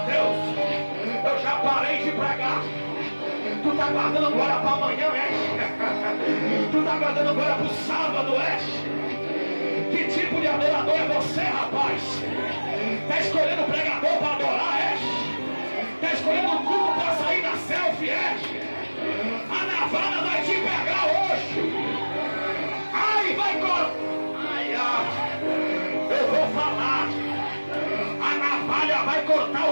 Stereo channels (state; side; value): inverted; both; correlation -1.00